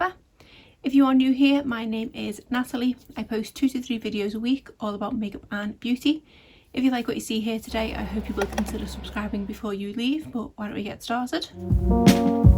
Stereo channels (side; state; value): both; identical; correlation 1.00